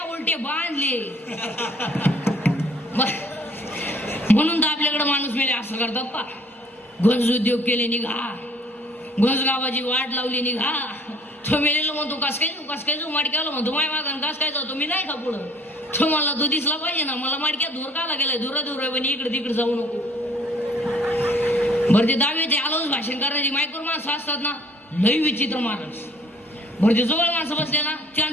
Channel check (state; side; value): normal; both; correlation 0.58